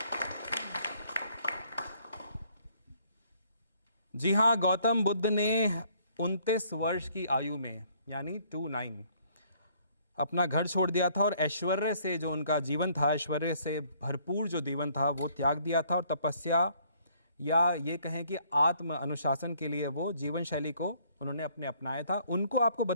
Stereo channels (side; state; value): both; inverted; correlation -0.63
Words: जी हाँ, गौतम बुद्ध ने 29 वर्ष की आयु में यानी 29 अपना घर छोड़ दिया था और ऐश्वर्य से जो उनका जीवन था, ऐश्वर्य से भरपूर जो जीवन था वो त्याग दिया था, और तपस्या या ये कहें कि आत्म अनुशासन के लिए वो जीवन शैली को उन्होंने अपनाया था। उनको आपको